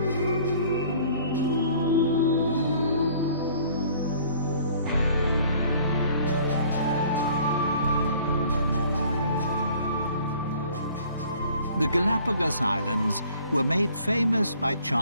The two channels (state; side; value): inverted; both; correlation -0.54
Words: The Galapagos Islands were made famous by